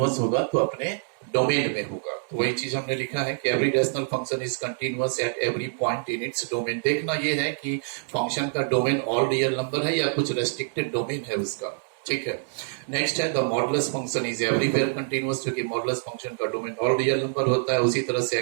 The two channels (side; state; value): left; silent; 61 dB below the other